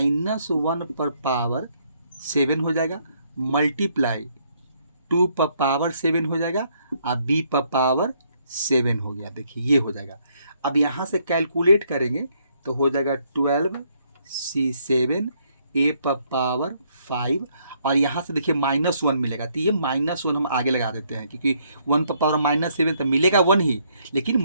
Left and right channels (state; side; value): inverted; both; correlation -0.70